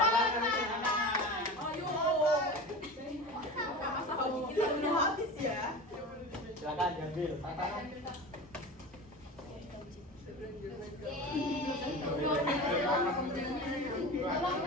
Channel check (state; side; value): normal; both; correlation 0.30